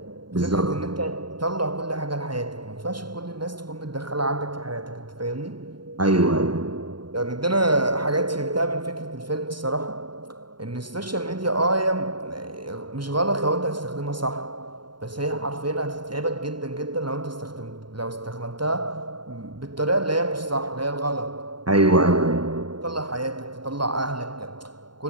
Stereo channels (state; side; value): late; left; 0.72 ms